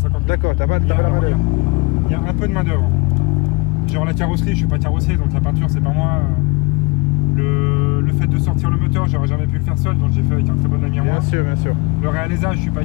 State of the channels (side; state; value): right; quieter; 26.5 dB